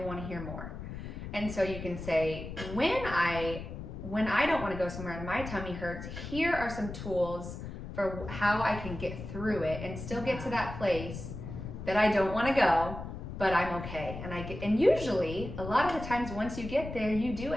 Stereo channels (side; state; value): left; noise; rumble, 9 dB below the sound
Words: to hear more. And so you can say, when I don't want to go somewhere and my tummy hurts, here are some tools for how I can get through it and still get to that place that I don't want to go, but I'm okay. And usually, a lot of the times once you get there, you do